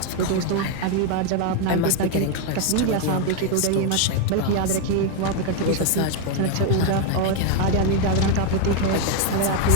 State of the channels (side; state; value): both; different; correlation 0.01